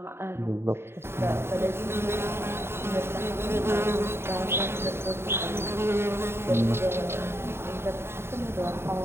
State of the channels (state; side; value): late; left; 0.12 ms